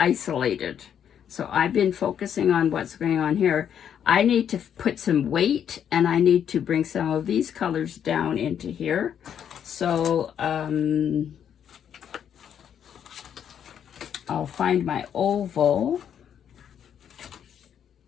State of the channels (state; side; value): quieter; right; 8.8 dB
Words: So I've been focusing on what's going on here. I need to put some weight, and I need to bring some of these colors down into here. So I'll find my oval.